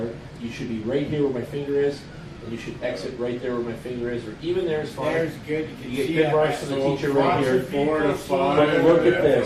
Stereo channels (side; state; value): both; identical; correlation 1.00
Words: You should be right here where my finger is, and you should exit right there where my finger is, or even there is fine. There's good. You get good marks from the teacher right here. 4 to 5. But look at